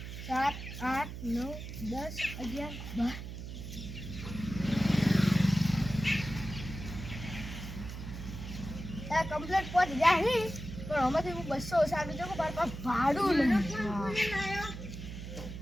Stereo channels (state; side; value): noise; right; hum, 9 dB below the sound